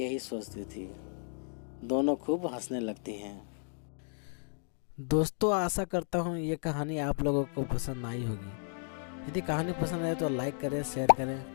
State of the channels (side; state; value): right; silent; digital silence